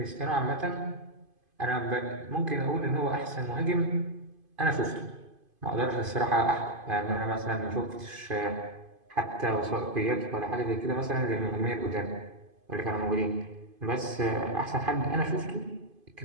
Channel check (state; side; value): late; left; 2.5 ms